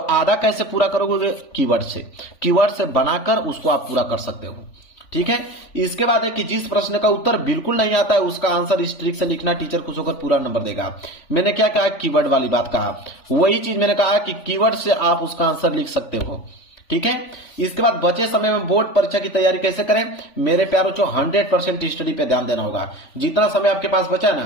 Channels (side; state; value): right; late; 3.4 ms